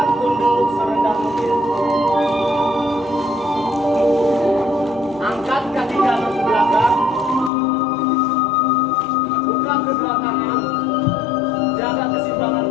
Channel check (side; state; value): right; drops out; at 7.5 s